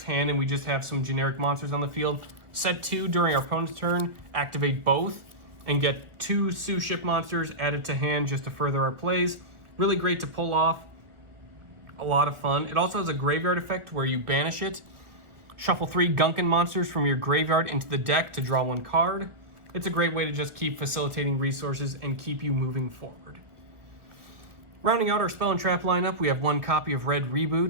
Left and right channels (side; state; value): left; late; 1.7 ms